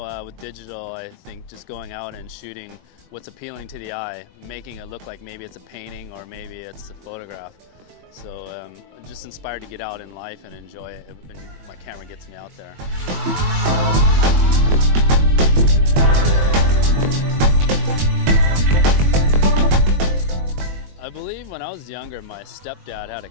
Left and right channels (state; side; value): late; left; 21 ms